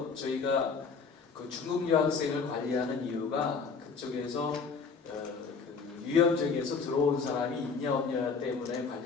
저희가 그 중국 유학생을 관리하는 이유가 그쪽에서 그 유염지역에서 들어온 사람이 있냐 없냐 때문에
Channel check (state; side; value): quieter; right; 5.1 dB